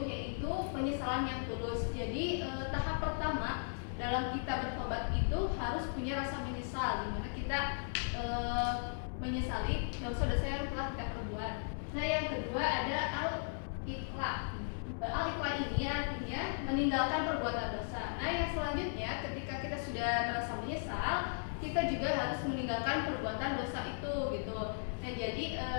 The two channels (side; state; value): right; silent; digital silence